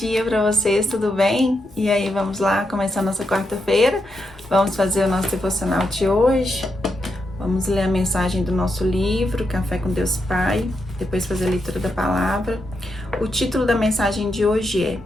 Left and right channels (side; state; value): both; normal; correlation 0.83